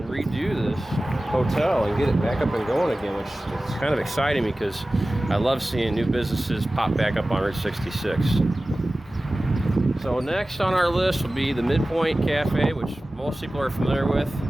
redo this hotel and get it back up and going again, which is kind of exciting because I love seeing new businesses pop back up on Route 66. So next on our list will be the Midpoint Cafe, which most people are familiar with.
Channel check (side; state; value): both; normal; correlation 0.97